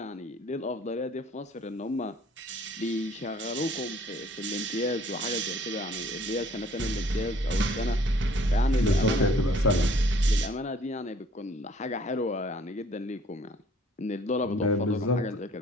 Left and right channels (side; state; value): both; normal; correlation 0.57